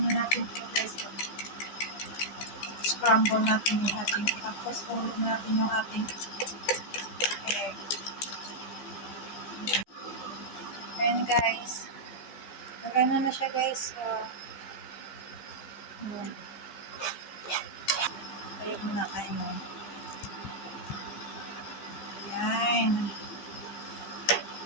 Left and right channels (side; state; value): right; late; 14 ms